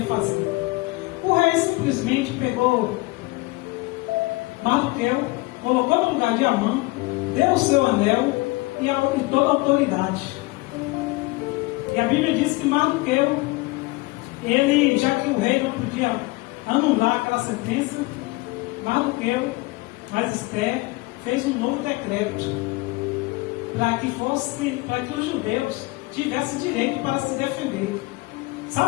fazer? O rei simplesmente pegou Mardoqueu, colocou no lugar de Amã, deu o seu anel e toda a autoridade. E a Bíblia diz que Mardoqueu, ele, já que o rei não podia anular aquela sentença, Mardoqueu, mas Esther, fez um novo decreto para que os judeus tivessem direito para se defender.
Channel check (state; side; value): quieter; right; 23.2 dB